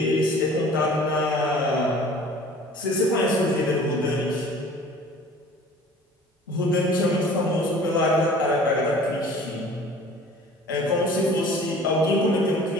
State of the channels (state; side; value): normal; both; correlation 0.48